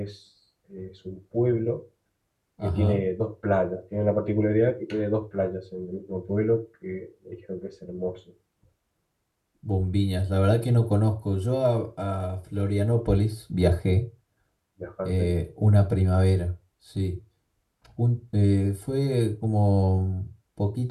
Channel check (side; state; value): both; identical; correlation 1.00